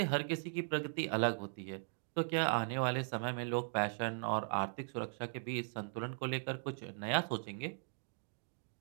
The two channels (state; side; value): silent; left; digital silence